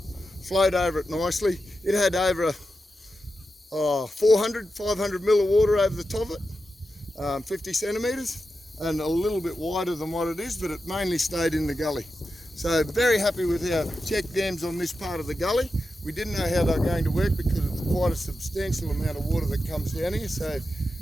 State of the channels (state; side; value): normal; both; correlation 0.90